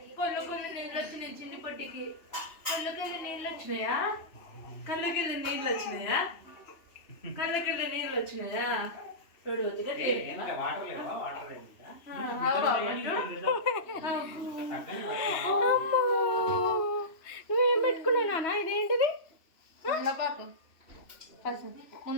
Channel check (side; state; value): right; late; 3.0 ms